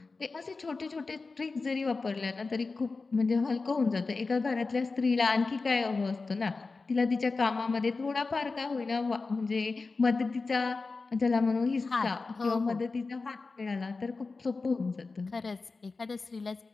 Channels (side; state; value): right; quieter; 4.0 dB